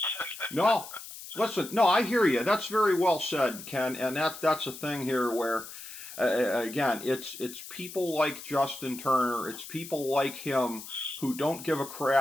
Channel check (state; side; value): noise; left; hiss, 13 dB below the sound